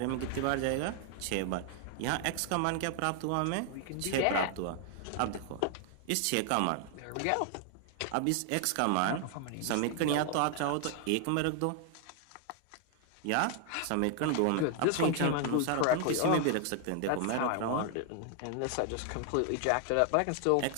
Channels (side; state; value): both; different; correlation 0.00